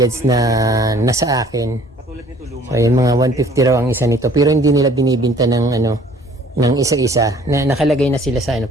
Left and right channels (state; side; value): normal; both; correlation 0.55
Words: na nasa akin. So yung mga 150 raw ang isa nito pero hindi nila binibinta ng ano, ng isa-isa. Nakalagay na sila sa ano,